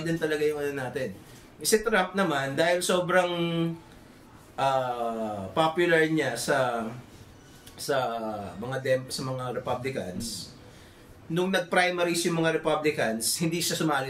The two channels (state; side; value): identical; both; correlation 1.00